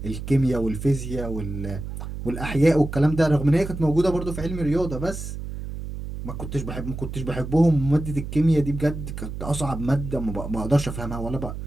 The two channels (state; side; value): noise; right; hum, 8 dB below the sound